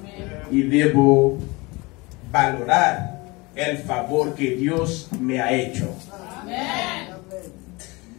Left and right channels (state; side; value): quieter; right; 24.7 dB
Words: Y debo valorar el favor que Dios me ha hecho. Amén.